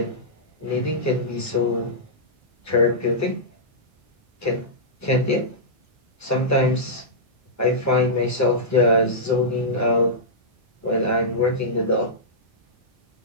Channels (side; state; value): both; normal; correlation -0.14